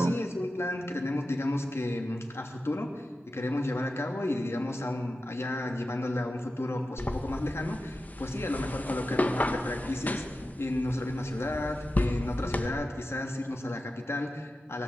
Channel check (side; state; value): both; normal; correlation 0.92